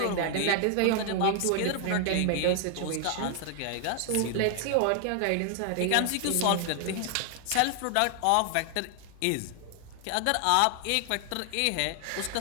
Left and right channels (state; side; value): different; both; correlation 0.00